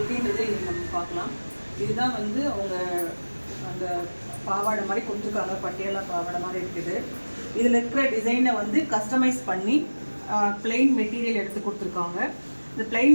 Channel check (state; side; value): inverted; both; correlation -1.00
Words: இன்றைக்கி நம்ம பார்க்கலாம். இதுதான் வந்து அவங்க அந்த பாவாடை மாதிரி கொடுத்துருக்காங்க, பட்டியாலா பாவாடை மாதிரி இருக்குது. இதில் இருக்கிற டிசைனை வந்து கஸ்டமைஸ் பண்ணி பிளெயின் மெட்டீரியல் எடுத்து கொடுத்துருக்காங்க. இந்த